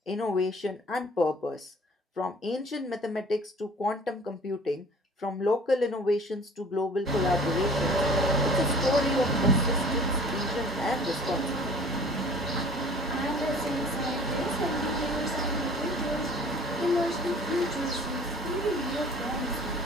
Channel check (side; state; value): both; normal; correlation 0.48